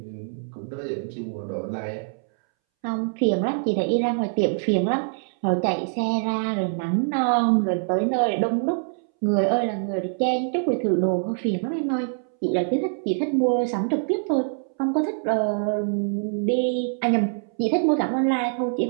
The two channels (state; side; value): silent; left; 62 dB below the other